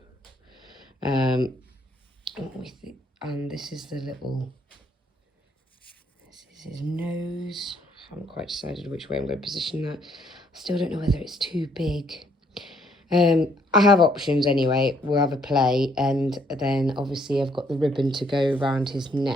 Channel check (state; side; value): normal; both; correlation 0.67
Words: And this is the little, this is his nose. I haven't quite decided which way I'm going to position that. I still don't know whether it's too big. I have options anyway. We'll have a play, and then obviously I've got the ribbon to go around his